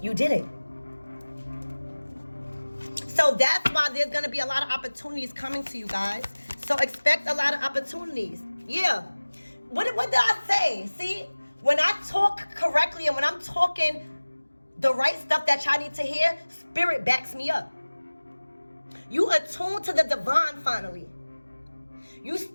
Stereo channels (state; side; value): inverted; both; correlation -1.00